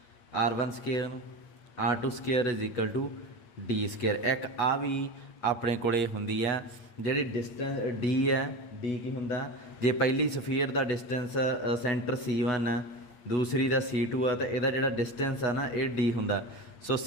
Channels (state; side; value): late; right; 8.7 ms